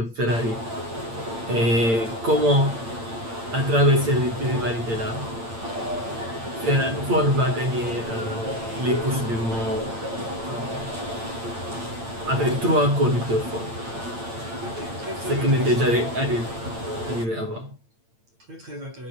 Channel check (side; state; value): left; late; 8.8 ms